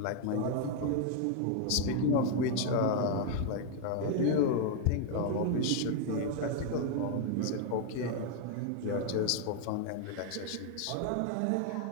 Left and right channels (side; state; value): both; different; correlation 0.00